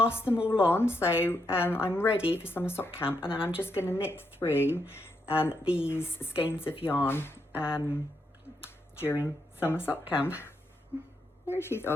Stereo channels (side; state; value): both; normal; correlation 0.80